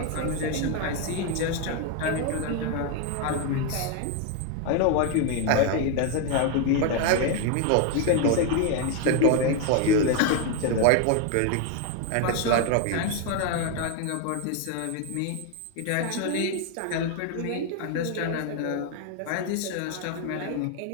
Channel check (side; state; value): both; different; correlation 0.01